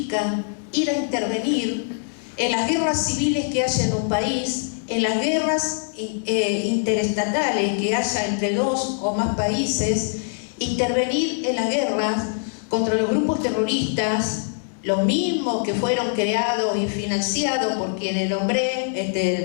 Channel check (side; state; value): right; silent; 63 dB below the other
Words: ir a intervenir en las guerras civiles que haya en un país, en las guerras interestatales que haya entre dos o más países, intervenir en las guerras contra los grupos terroristas, los mismos que fueron creados y financiados por quienes